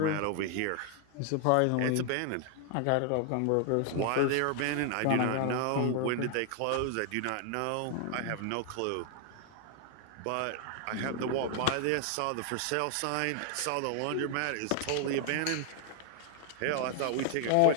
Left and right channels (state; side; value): different; both; correlation 0.00